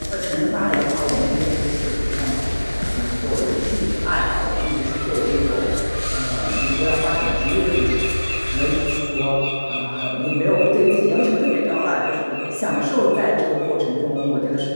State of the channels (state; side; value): inverted; both; correlation -1.00